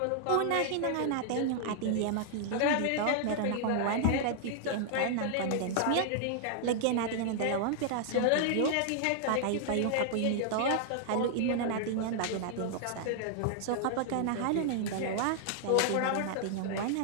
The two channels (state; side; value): different; both; correlation -0.01